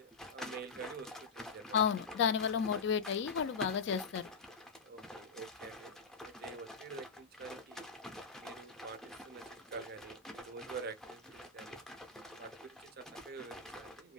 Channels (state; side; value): quieter; right; 5.1 dB